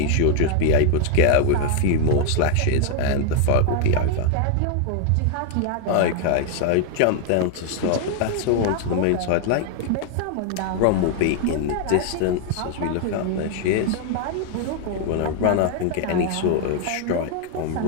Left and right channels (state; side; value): different; both; correlation 0.00